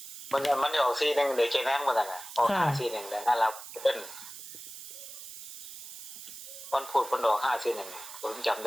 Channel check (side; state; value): right; noise; hiss, 12 dB below the sound